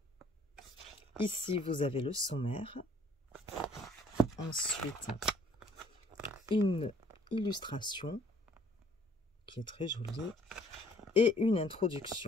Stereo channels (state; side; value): normal; both; correlation 0.59